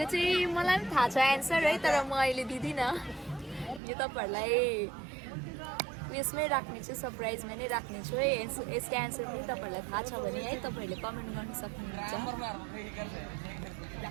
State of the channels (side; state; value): left; drops out; at 3.8 s